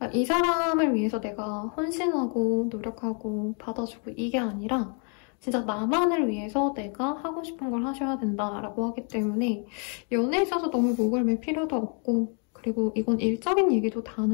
이 사람을 위해서 내가 헌신하고 노력하고 받아주고 이게 아니라 진짜 나만을 위해서 내가 하고 싶은 걸 하셔야 된다라고 하기 때문에 연애에 있어서 너무 목을 맬 필요도 없고 그리고 이건 일적인 얘기도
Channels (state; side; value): quieter; right; 39.8 dB